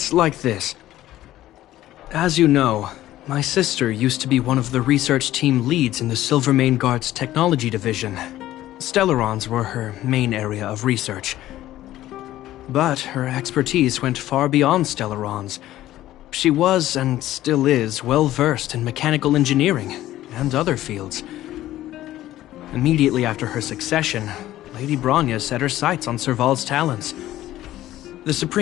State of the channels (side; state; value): right; quieter; 14.4 dB